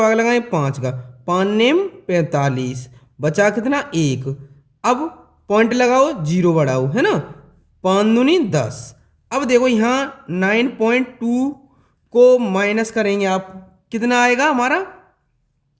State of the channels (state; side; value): identical; both; correlation 1.00